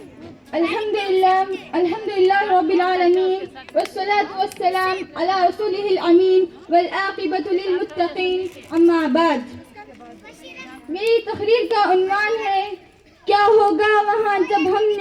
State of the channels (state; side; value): identical; both; correlation 1.00